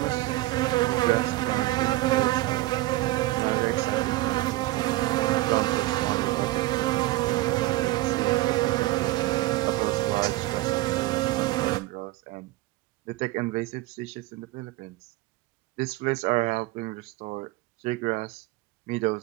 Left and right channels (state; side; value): quieter; left; 18.7 dB